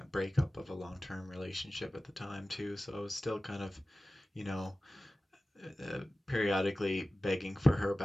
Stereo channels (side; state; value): both; normal; correlation 0.96